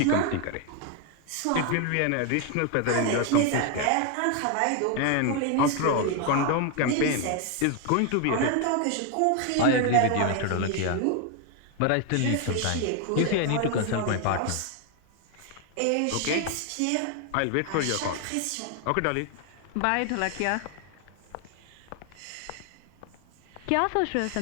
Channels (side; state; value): both; different; correlation 0.01